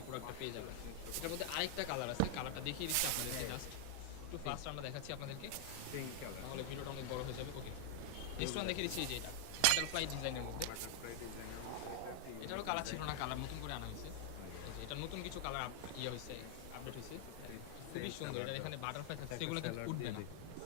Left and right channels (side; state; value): both; different; correlation 0.00